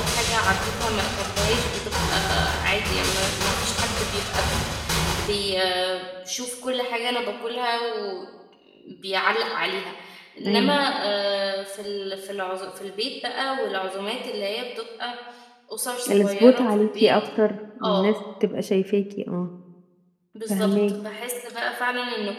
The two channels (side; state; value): both; identical; correlation 1.00